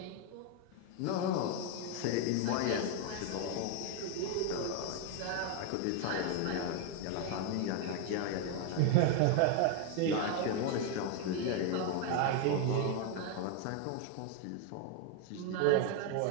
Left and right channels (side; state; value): both; different; correlation 0.01